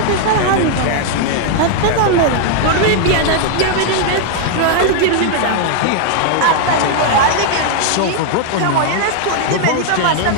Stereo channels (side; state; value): both; different; correlation 0.00